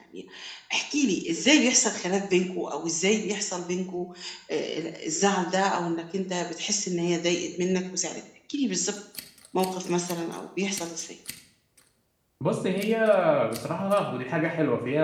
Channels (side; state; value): both; identical; correlation 1.00